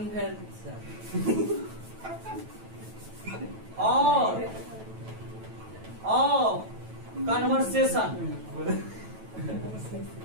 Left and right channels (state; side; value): late; left; 9.1 ms